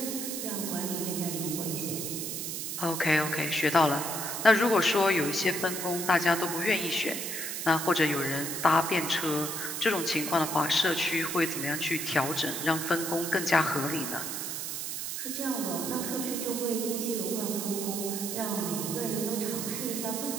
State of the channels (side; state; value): right; noise; hiss, 4 dB below the sound